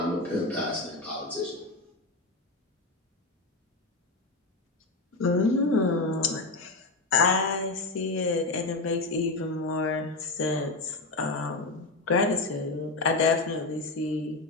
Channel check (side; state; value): right; quieter; 3.2 dB